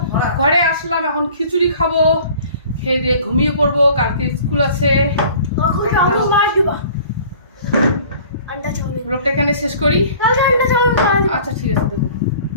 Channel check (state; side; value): inverted; both; correlation -0.48